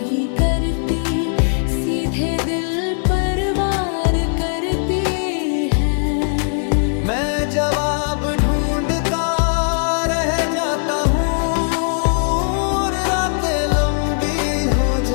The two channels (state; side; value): silent; right; digital silence